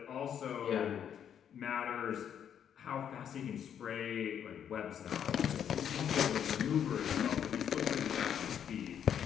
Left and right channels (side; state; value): right; quieter; 8.9 dB